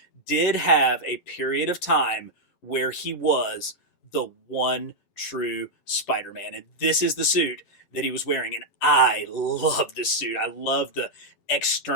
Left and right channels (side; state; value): right; late; 10 ms